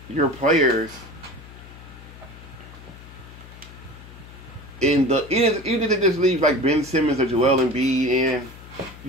your players, even if they just leave like Ben Simmons or Joel Embiid in,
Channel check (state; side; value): noise; left; hum, 18 dB below the sound